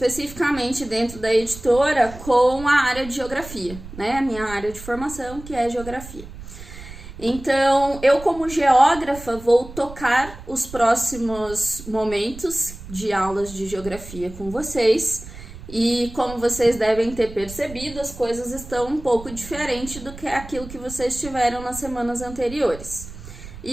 dentro da editora com a área de geografia, né? A minha área de formação, que é geografia. Então, eu como geógrafa vou tocar os próximos momentos de aulas de geografia com vocês. E como vocês devem ter percebido, as coisas estão um pouco diferentes do que aquilo que vocês tiveram nas semanas anteriores.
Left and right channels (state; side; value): noise; right; rumble, 14 dB below the sound